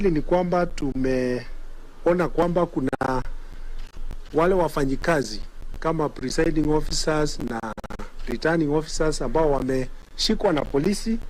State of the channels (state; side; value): identical; both; correlation 1.00